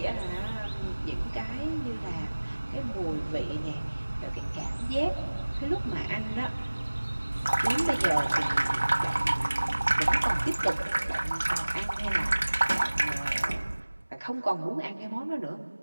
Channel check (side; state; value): both; inverted; correlation -1.00